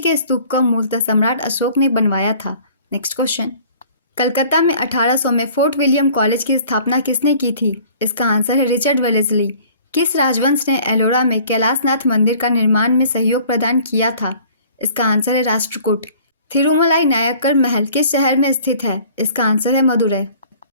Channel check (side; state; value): both; inverted; correlation -0.51